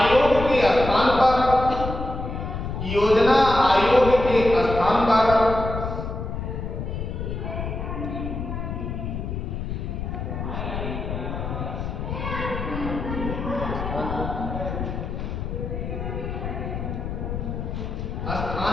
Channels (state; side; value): noise; left; rumble, 5 dB below the sound